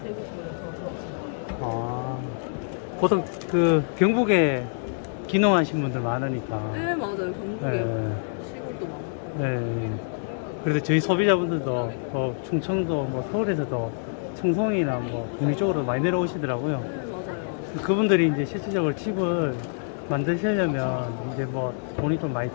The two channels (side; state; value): right; silent; digital silence